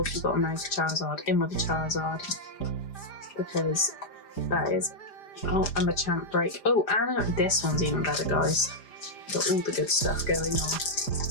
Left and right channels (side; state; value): right; late; 5.0 ms